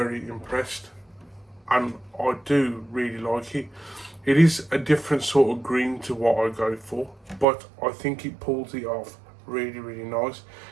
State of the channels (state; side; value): drops out; left; at 7.5 s